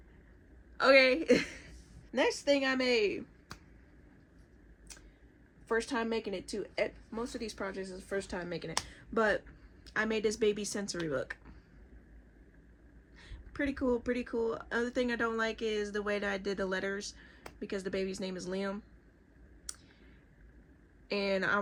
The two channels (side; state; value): both; identical; correlation 1.00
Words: okay. Next thing I made, first time making it too. Most of these projects is the first time making it, but I made this baby sensory book. Pretty cool, pretty cool. Other thing I don't like is the way that I did the letters, because the baby's name is Liam, and I